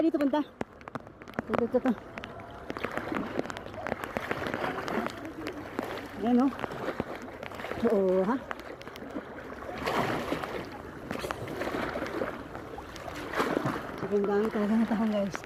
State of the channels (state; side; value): identical; both; correlation 1.00